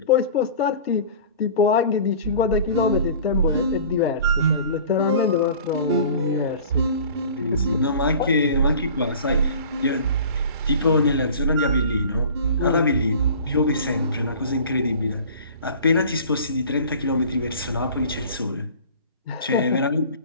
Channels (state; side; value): inverted; both; correlation -0.42